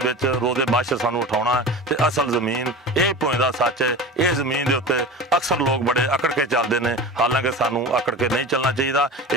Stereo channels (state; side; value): normal; both; correlation 0.32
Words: विच रोज़े बाशर सानूं उठाउणा ते असल जमीन यही भोएं दा सच है। इस जमीन दे उत्ते अक्सर लोग बड़े अकड़ के चलते हैं, हालांकि सानूं अकड़ के नहीं चलना